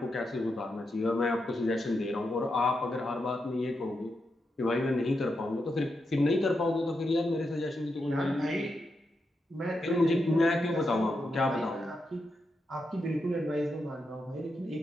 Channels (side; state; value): both; normal; correlation 0.85